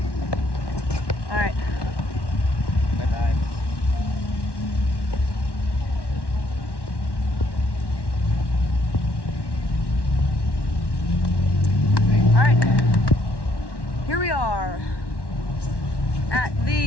All right. Bye-bye. All right. Here we are at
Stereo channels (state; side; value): late; right; 1.1 ms